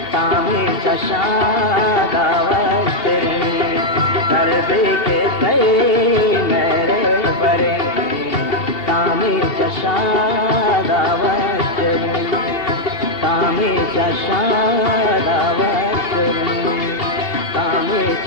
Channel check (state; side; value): late; right; 2.5 ms